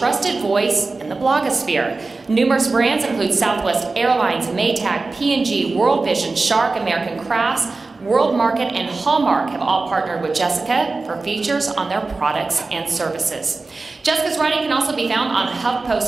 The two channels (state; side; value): quieter; left; 3.7 dB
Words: voice in the blogosphere. Numerous brands include Southwest Airlines, Maytag, P&G, World Vision, Shark, American Crafts, World Market, and Hallmark have all partnered with Jessica for features on their products and services. Jessica's writing can also be found on